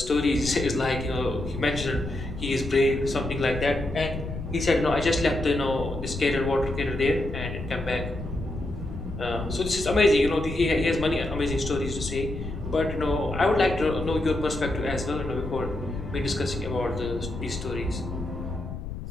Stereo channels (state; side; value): noise; left; rumble, 8 dB below the sound